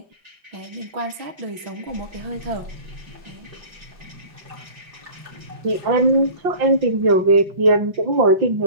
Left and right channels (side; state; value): left; late; 5.8 ms